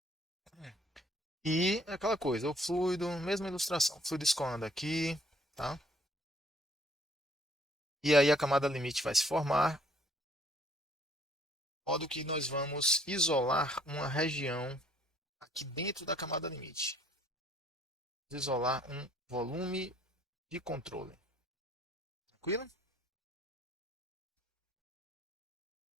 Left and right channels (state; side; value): normal; both; correlation 0.62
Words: E aquela coisa, o fluido, mesma ilustração. O fluido escoando aqui, tá? E aí a camada limite vai se formar, de modo que nós vamos isolar uma região aqui dentro da camada limite. Isolar um volume de controle. Tranquilo?